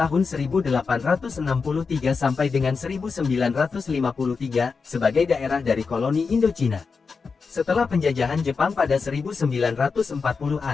1863 sampai dengan 1953 sebagai daerah dari koloni Indochina. Setelah penjajahan Jepang pada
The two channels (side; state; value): right; quieter; 5.0 dB